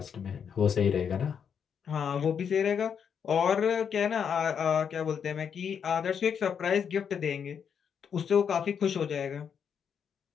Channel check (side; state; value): right; quieter; 7.4 dB